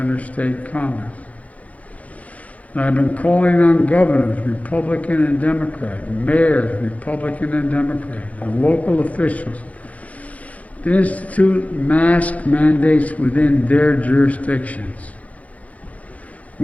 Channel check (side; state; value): right; late; 0.068 ms